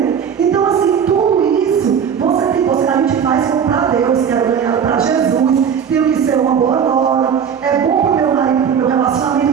Então, assim, tudo isso, a gente faz como para Deus, que era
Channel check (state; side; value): quieter; left; 7.5 dB